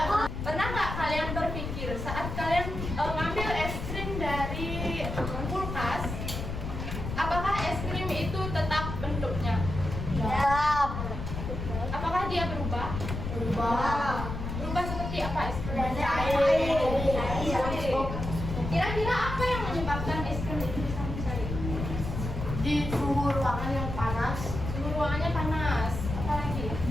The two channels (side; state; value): left; noise; rumble, 5 dB below the sound